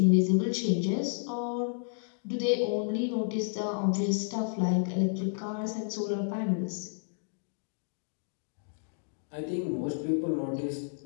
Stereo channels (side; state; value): right; silent; digital silence